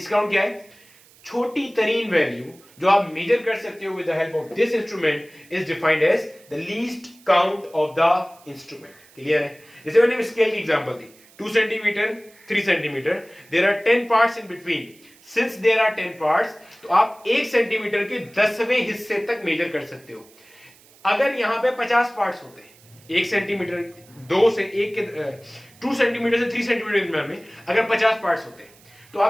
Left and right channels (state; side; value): noise; right; hiss, 27 dB below the sound